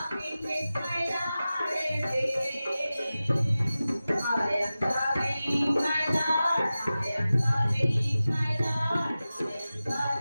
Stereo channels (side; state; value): both; inverted; correlation -0.95